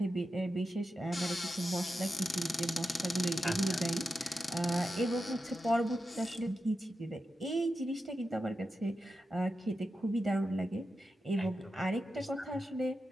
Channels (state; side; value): normal; both; correlation 0.90